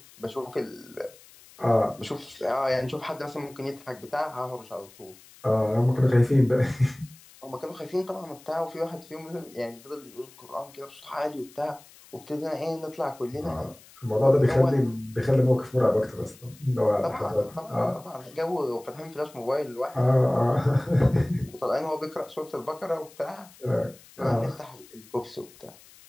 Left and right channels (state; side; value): noise; left; hiss, 23 dB below the sound